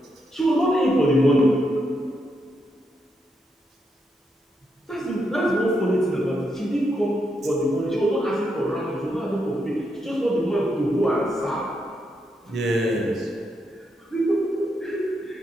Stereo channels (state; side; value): normal; both; correlation 0.81